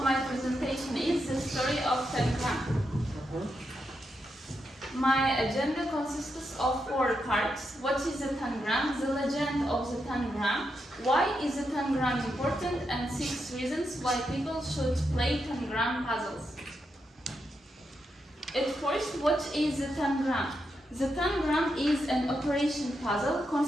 my presentation is The Story of Tangram. My agenda consists of 4 parts. What is a tangram? The legend of the tangram. Why is the tangram important? And 6 reasons why people should play tangram puzzles. At first, what is the tangram? The tangram is an operation puzzle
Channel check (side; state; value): both; normal; correlation 0.84